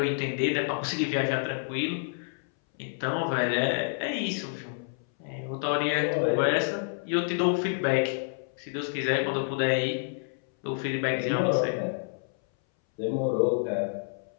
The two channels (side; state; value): right; silent; 59 dB below the other